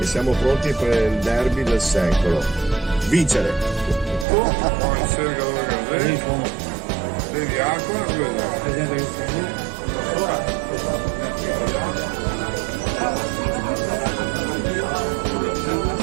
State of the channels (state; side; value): drops out; left; at 4.2 s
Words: siamo pronti per il derby del secolo. Vincere! Vedi acqua?